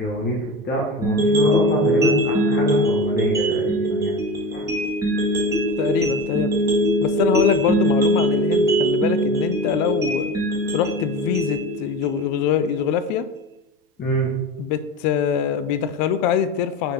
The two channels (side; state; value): both; normal; correlation 0.29